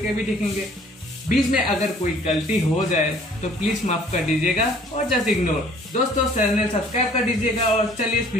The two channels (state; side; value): normal; both; correlation 0.55